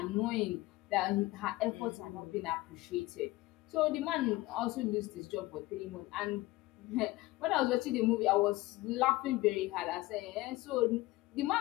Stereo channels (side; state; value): right; quieter; 19.3 dB